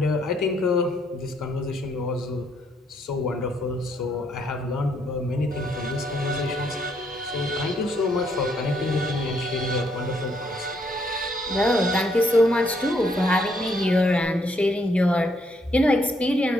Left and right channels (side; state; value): both; normal; correlation 0.72